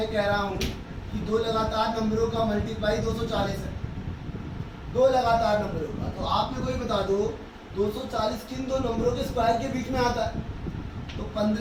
कह रहा हूँ कि दो लगातार नंबरों का मल्टीप्लाई 240 है, दो लगातार नंबरों का। तो आप मेरे को ये बता दो 240 किन दो नंबरों के स्क्वायर के बीच में आता है? तो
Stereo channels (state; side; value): identical; both; correlation 1.00